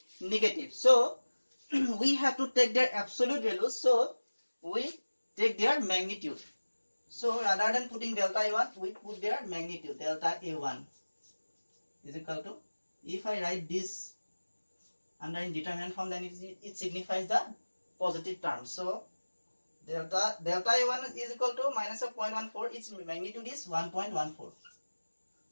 negative. So we have to take their absolute values, so we take their magnitude. So rather than putting delta A1, we put their magnitude. Delta A1 is equal to, if I write this under indeterminate form, then it signifies the positive term. So delta A1 is equal to minus of 0.14, its magnitude is 1.14.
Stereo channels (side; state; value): both; inverted; correlation -1.00